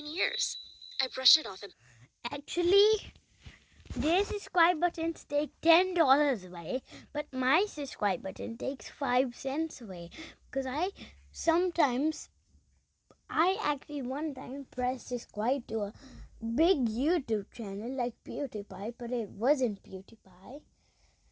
years. I brushed it off and Actually, their subscribe buttons take $10 away, but my subscribe button takes 5 cents away. Because I actually one time pressed subscribe to a big YouTube channel like PewDiePie, but it wasn't PewDiePie.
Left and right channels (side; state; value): both; identical; correlation 1.00